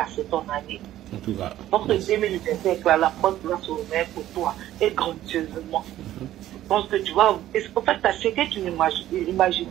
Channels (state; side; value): quieter; left; 13.4 dB